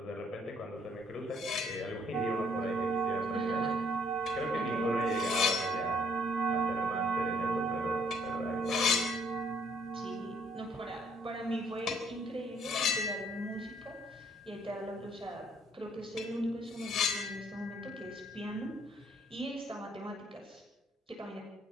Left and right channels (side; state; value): both; normal; correlation 0.65